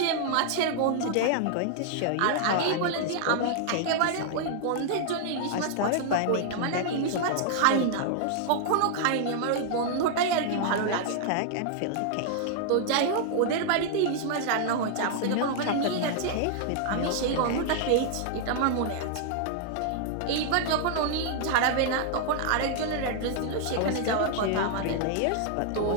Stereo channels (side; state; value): both; different; correlation -0.01